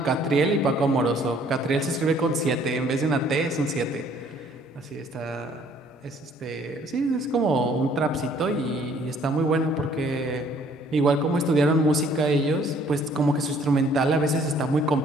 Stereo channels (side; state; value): both; normal; correlation 0.60